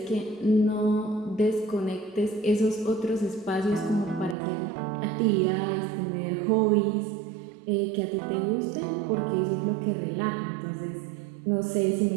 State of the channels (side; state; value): left; drops out; at 4.4 s